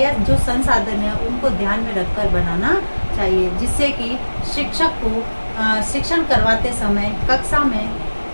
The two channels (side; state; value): both; inverted; correlation -1.00